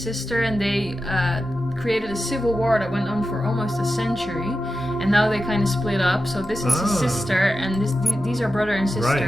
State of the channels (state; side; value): normal; both; correlation 0.91